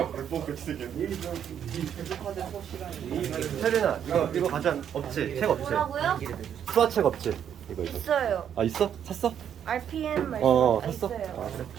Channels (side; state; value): left; quieter; 9.0 dB